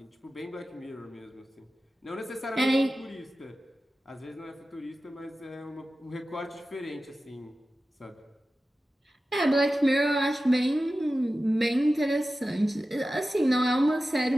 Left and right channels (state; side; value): normal; both; correlation 0.94